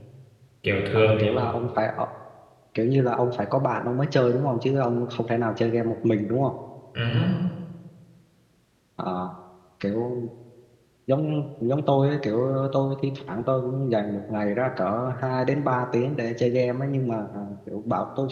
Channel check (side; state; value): both; identical; correlation 1.00